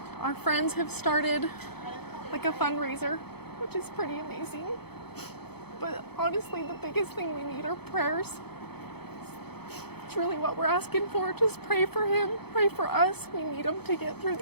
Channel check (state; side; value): late; right; 0.97 ms